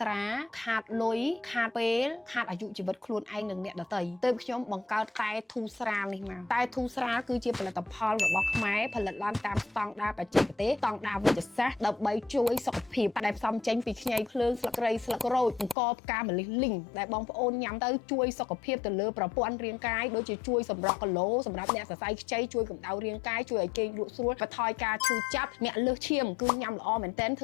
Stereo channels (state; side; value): drops out; right; at 15.8 s